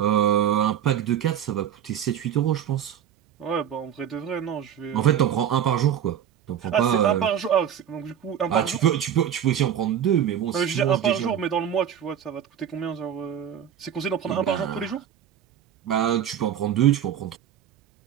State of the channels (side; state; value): left; quieter; 9.5 dB